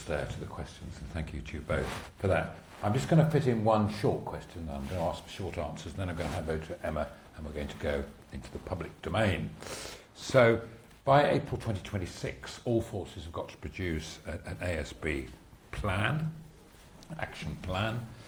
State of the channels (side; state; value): both; identical; correlation 1.00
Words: there to the questions, and thank you to you both for that. I'm just going to fit in one short question. I'm going to ask for short answers, and then I'm going to hand over to Emma, and we're going to go into the public domain. So, by April 2026, all forces have got to produce an ASB plan, action plan.